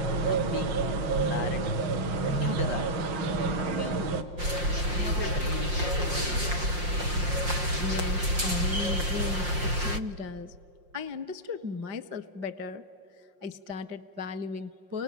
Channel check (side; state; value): left; late; 5.7 ms